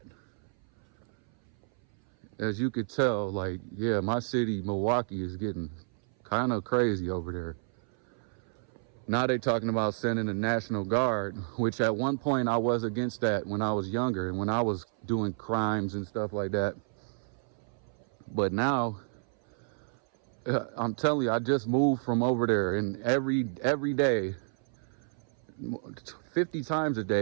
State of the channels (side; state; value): left; silent; 57 dB below the other